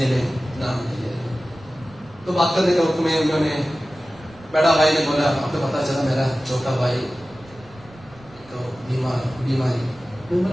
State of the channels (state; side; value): noise; right; rumble, 24 dB below the sound